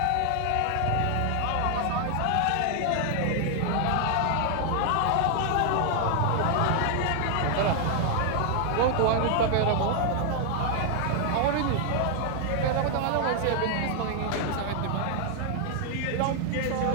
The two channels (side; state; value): both; different; correlation 0.00